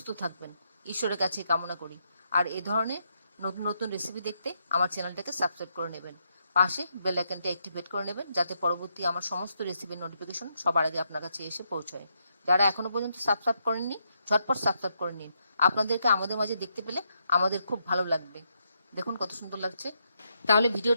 থাকবেন, ঈশ্বরের কাছে কামনা করি। আর এই ধরনের নতুন নতুন রেসিপি দেখতে আমার চ্যানেলটাকে সাবস্ক্রাইব করে নেবেন, পাশে বেল আইকনটা অ্যাক্টিভেট করে নেবেন, যাতে পরবর্তী আমার সমস্ত রেসিপির নোটিফিকেশন সবার আগে আপনার কাছে এসে পৌঁছায়। যারা এখনো পর্যন্ত সাবস্ক্রাইব করেননি, ঝটপট সাবস্ক্রাইব করে নিন। আপনাদেরকে আমাদের মাঝে দেখতে পেলে আমাদের খুব ভালো লাগবে। দেখুন কত সুন্দর লাগছে। তাহলে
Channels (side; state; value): both; inverted; correlation -0.79